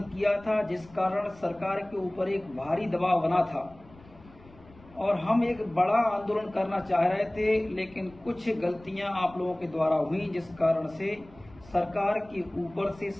किया था, जिस कारण सरकार के ऊपर एक भारी दबाव बना था और हम एक बड़ा आंदोलन करना चाह रहे थे, लेकिन कुछ गलतियां आप लोगों के द्वारा हुई, जिस कारण से सरकार के ऊपर से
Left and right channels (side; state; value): left; noise; rumble, 24 dB below the sound